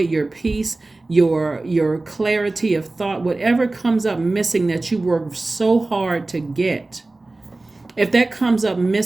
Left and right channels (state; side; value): quieter; left; 3.1 dB